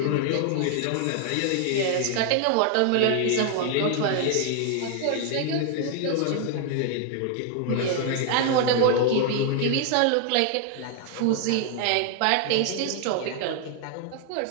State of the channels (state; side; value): different; both; correlation 0.00